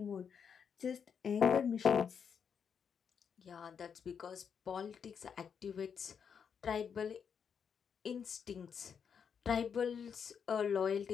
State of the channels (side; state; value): right; quieter; 7.0 dB